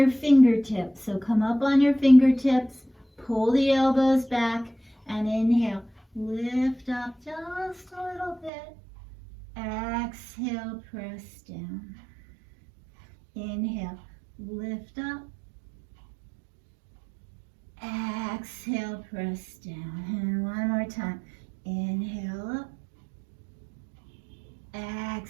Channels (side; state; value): left; drops out; at 8.5 s